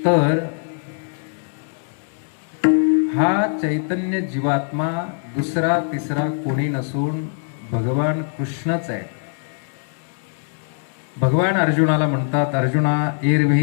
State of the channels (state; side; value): silent; right; 64 dB below the other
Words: तर हा चैतन्य जीवात्मा दुसरा तिसरा कोणी नसून भगवान कृष्णच आहे भगवान अर्जुनाला म्हणतात अर्जुना